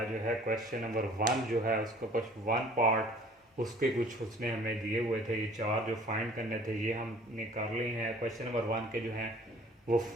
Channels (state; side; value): normal; both; correlation 0.51